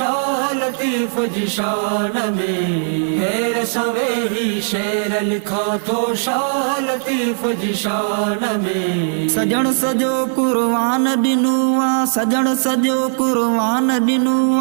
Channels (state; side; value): silent; left; 67 dB below the other